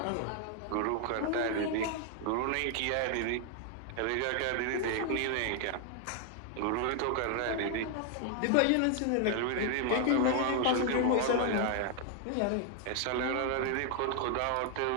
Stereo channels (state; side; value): different; both; correlation 0.00